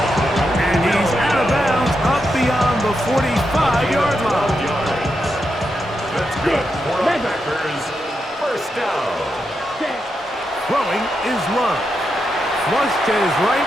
And he's out of bounds up beyond the 45-yard line. That's good for the Packers. 1st down. Throwing is Love. Flush to his right.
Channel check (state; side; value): normal; both; correlation 0.85